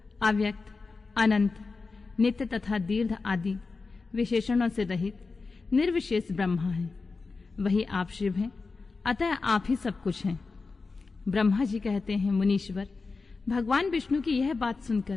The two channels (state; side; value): quieter; right; 4.1 dB